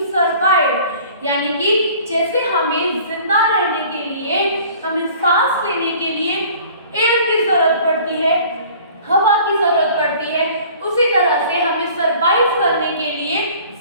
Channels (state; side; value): inverted; both; correlation -0.48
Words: survive. यानी कि जैसे हमें जिंदा रहने के लिए, हमें सांस लेने के लिए एयर की जरूरत पड़ती है, हवा की जरूरत पड़ती है, उसी तरह से हमें सरवाइव करने के लिए